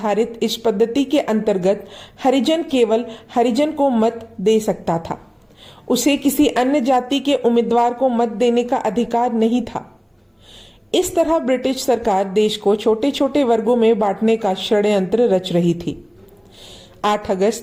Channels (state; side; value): identical; both; correlation 1.00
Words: इस पद्धति के अंतर्गत हरिजन केवल हरिजन को मत दे सकता था। उसे किसी अन्य जाति के उम्मीदवार को मत देने का अधिकार नहीं था। इस तरह ब्रिटिश सरकार देश को छोटे छोटे वर्गों में बांटने का षड्यंत्र रच रही थी। 8